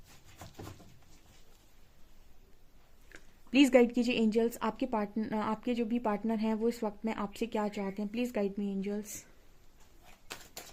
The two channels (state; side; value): identical; both; correlation 1.00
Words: प्लीज़ गाइड कीजिए एंजल्स। आपके जो भी पार्टनर हैं वो इस वक्त में आपसे क्या चाहते हैं। Please guide me angels.